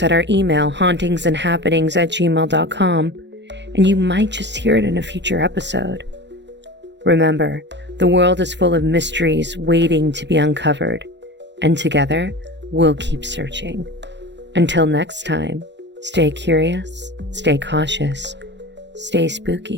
at our email, hauntingsandhappenings@gmail.com, and you might just hear it in a future episode. Remember, the world is full of mysteries waiting to be uncovered, and together, we'll keep searching. Until next time, stay curious, stay cautious, stay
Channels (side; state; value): left; late; 0.52 ms